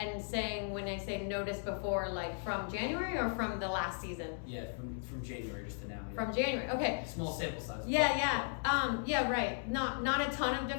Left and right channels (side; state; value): right; silent; digital silence